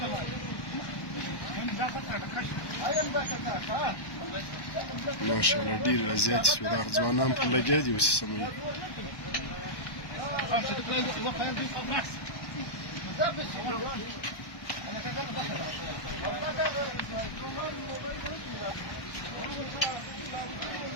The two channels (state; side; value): late; right; 1.1 ms